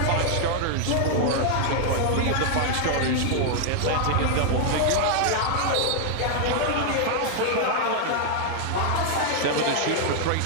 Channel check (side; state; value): both; different; correlation 0.00